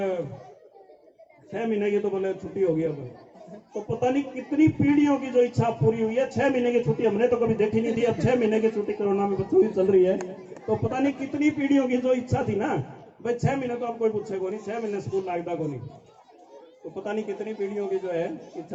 6 महीने की तो बोले छुट्टी होगी अब। तो पता नहीं कितनी पीढ़ियों की जो इच्छा पूरी हुई है। 6 महीने की छुट्टी हमने तो कभी देखी नहीं थी, अब 6 महीने की छुट्टी कोरोना में बच्चों की चल रही है। तो पता नहीं कितनी पीढ़ियों की जो इच्छा थी ना, भाई 6 महीने तो अब कोई पूछे को नहीं, 6 महीने स्कूल लगता को नहीं। तो पता नहीं कितनी पीढ़ियों की जो है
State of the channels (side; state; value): both; identical; correlation 1.00